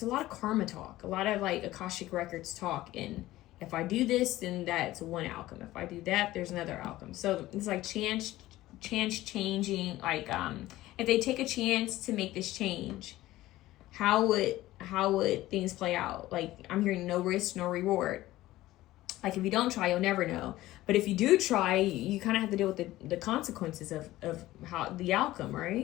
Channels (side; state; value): right; quieter; 16.3 dB